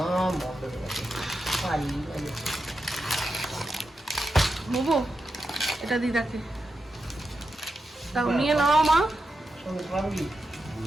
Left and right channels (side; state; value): both; normal; correlation 0.88